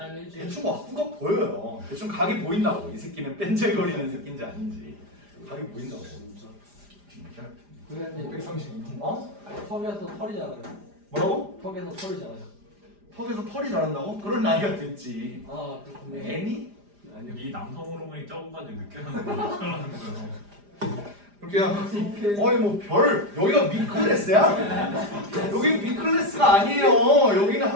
일주일. 대충 학구가 보여요. 대충 각이 보인다고. 이 새끼는 뺀질거리는 새끼인지 아닌지 각이 보인다고. 진짜. 진짜. 선생님 132분. 어? 턱에서 털이 자라요. 뭐라고? 턱에서 털이 자라요. 턱에서 털이 자란다고? 그런 나이가 됐지. 아 그렇군요. 애니? 아니요. 이 남성 호르몬이 적은까지 느껴하는 거 어쩌라는 거예요. 그렇게요. 어이 뭐 별 여기가 미클래스야? 여기 미클래스가 아니에요. 여기는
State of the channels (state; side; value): late; left; 4.9 ms